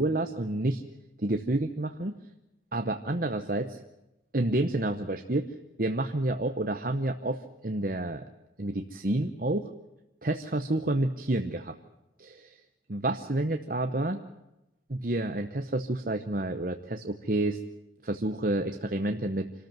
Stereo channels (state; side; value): normal; both; correlation 0.53